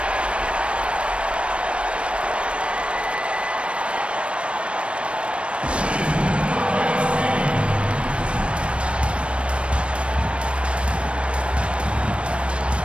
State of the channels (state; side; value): late; left; 0.059 ms